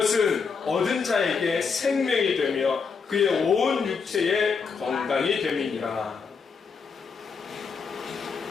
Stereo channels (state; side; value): quieter; right; 5.5 dB